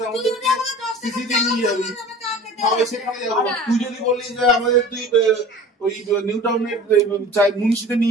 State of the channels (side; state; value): both; normal; correlation 0.42